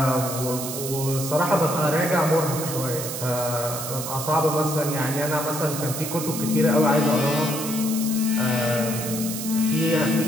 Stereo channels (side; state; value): right; noise; hiss, 6 dB below the sound